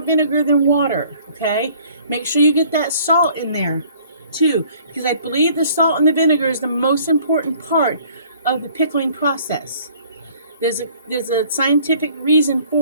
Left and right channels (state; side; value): inverted; both; correlation -0.56